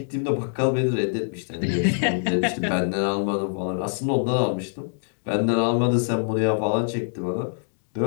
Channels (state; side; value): silent; right; digital silence